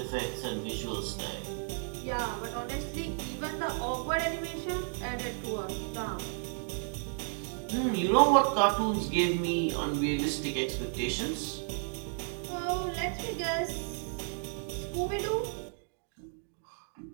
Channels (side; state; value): left; silent; 56 dB below the other